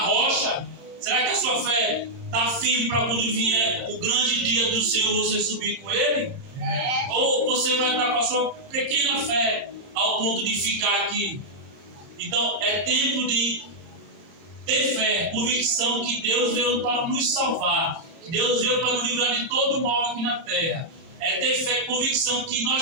Será que a sua fé está firme para quando vier o grande dia do Senhor você subir com Ele? Ou você vai estar com a sua pequena fé ao ponto de ficar aqui? Então é tempo de ter fé, convicção que Deus veio para nos salvar, que Deus veio para nos livrar de todo mal aqui na terra. É ter fé, convicção que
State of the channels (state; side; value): late; left; 31 ms